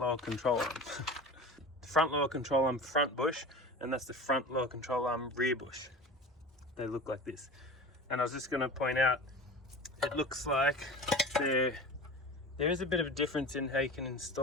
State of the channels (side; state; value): both; normal; correlation 0.34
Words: control arm. The front lower control arm front bush, and that's the front lower control arm rear bush. They look like this. And I was just going to point out, it looks like there is a bit of a difference in how you can